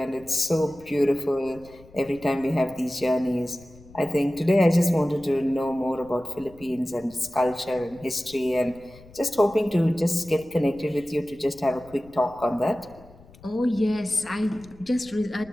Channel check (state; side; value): noise; left; rumble, 23 dB below the sound